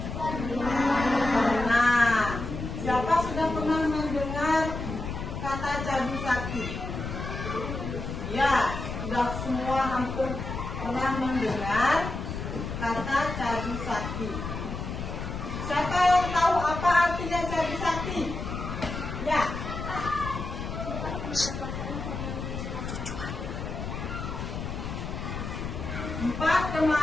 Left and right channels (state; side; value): noise; left; rumble, 6 dB below the sound